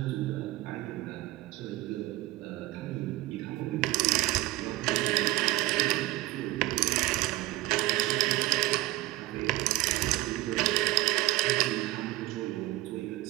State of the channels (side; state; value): left; quieter; 18.5 dB